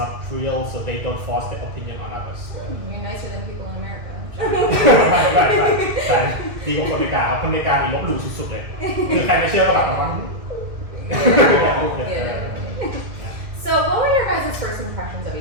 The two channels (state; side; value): late; left; 2.3 ms